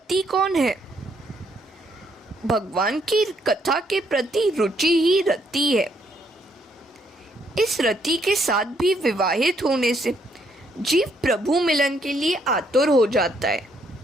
कौन है? भगवान की कथा के प्रति रुचि ही रति है। इस रति के साथ भी विवाहित होने से जीव प्रभु मिलन के लिए आतुर हो जाता है।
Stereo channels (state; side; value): normal; both; correlation 0.72